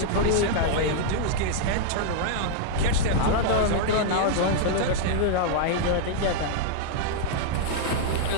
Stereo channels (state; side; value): different; both; correlation -0.01